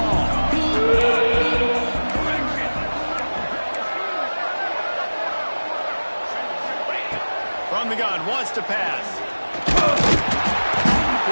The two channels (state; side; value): inverted; both; correlation -1.00